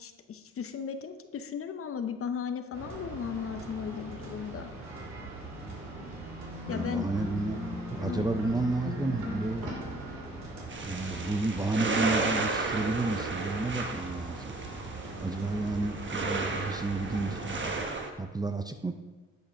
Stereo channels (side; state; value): both; normal; correlation 0.57